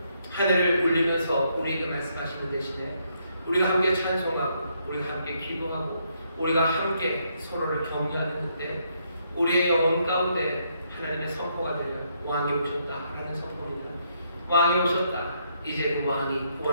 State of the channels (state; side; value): inverted; both; correlation -0.75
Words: 하늘을 울리면서 우리에게 말씀하시는 대신에, 우리가 함께 찬송하고 우리가 함께 기도하고 우리가 함께 서로를 격려하는 그때 우리의 영혼 가운데 하나님의 선포가 되려 왕이 오셨다 라는 선포입니다. 왕이 오셨다. 이제 그 왕이